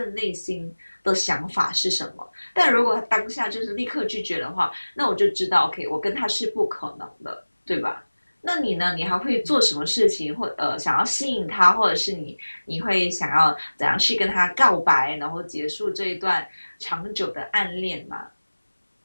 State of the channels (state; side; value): inverted; both; correlation -1.00